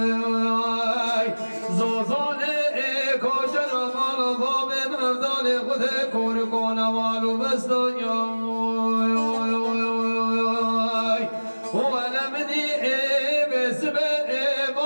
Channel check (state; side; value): inverted; both; correlation -1.00